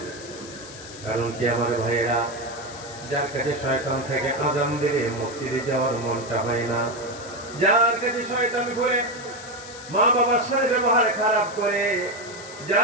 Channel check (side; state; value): left; noise; hiss, 15 dB below the sound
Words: কারণ কি আমার ভাইয়েরা, যার কাছে শয়তান থেকে আজান দিলে মসজিদে যাওয়ার মনটা হয় না, যার কাছে শয়তান ঘুরে মা বাবার সাথে ব্যবহার খারাপ করে,